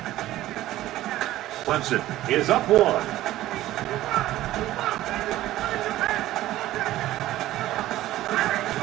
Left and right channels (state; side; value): quieter; left; 15.0 dB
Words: Clemson is up 1.